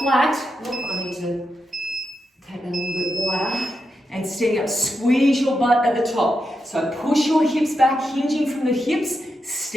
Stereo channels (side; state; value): both; normal; correlation 0.86